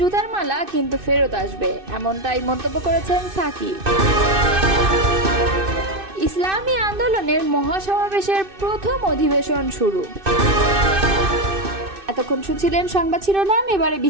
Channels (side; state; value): left; late; 2.6 ms